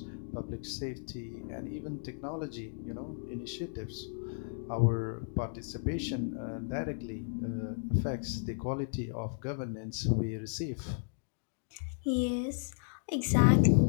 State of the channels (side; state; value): right; silent; digital silence